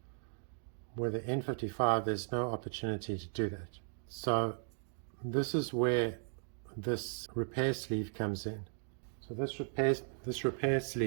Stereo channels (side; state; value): left; silent; digital silence